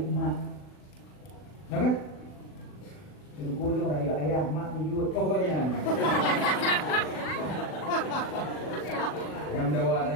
emak, nampak? Kulung rayu ayah, mak tujuh pokoknya. Yang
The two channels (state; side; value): late; right; 40 ms